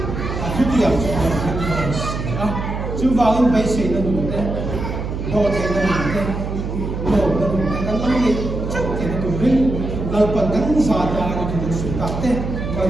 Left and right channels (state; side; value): noise; right; hum, 5 dB below the sound